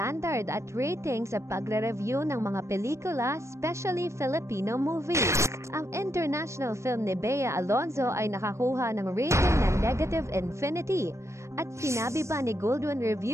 at rating sa pagre-review ng mga pelikula, especially Filipino movies. Ang international film ni Bea Alonzo ay nakakuha ng rating na negative infinity. At sinabi pa ni Goldwyn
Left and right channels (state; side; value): late; left; 0.14 ms